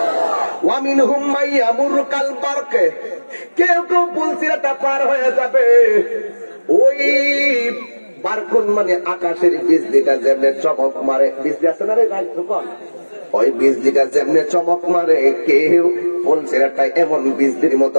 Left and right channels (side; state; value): both; inverted; correlation -1.00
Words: ওয়া মিনহুম মান ইয়ামুরু কাল বারক, কেউ কেউ পুল সিরাতটা পার হয়ে যাবে ওই বারকুন মানে আকাশের বিজলিটা যেমনে চমক মারে, বিজলি আছে না রে ভাই তখন, ওই বিজলিটা যেমনে চমক মারে কেউ পুল সিরাতটা এমন বিজলির